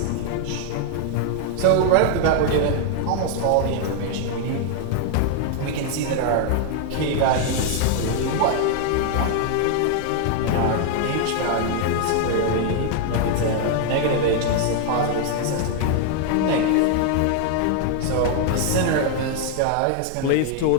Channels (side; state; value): both; different; correlation 0.00